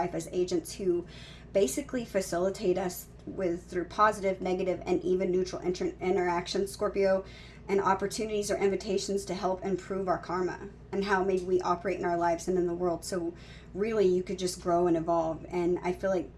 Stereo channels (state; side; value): identical; both; correlation 1.00